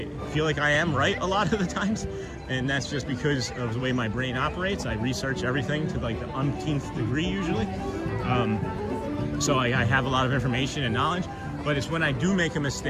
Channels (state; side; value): identical; both; correlation 1.00